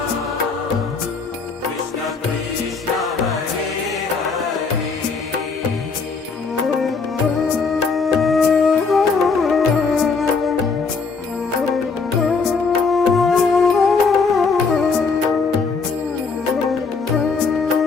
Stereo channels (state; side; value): quieter; right; 4.7 dB